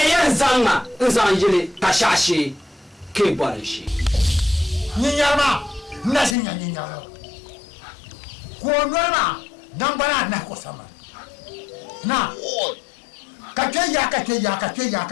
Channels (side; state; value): right; drops out; at 6.4 s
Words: zanga nzanjile kashashi ke bwarishi Ninyama nasi nyanyama kuonana nambara na kusama na kakeya